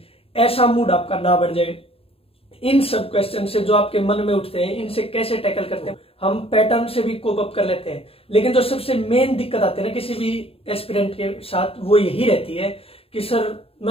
ऐसा मूड आपका ना बढ़ जाए। इन सब क्वेश्चन से जो आपके मन में उठते हैं, इनसे कैसे टैकल करते हैं। हम पैटर्न से भी कोप अप कर लेते हैं, लेकिन जो सबसे मेन दिक्कत आती है ना किसी भी एस्पिरेंट के साथ, वो यही रहती है कि सर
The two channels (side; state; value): right; late; 0.28 ms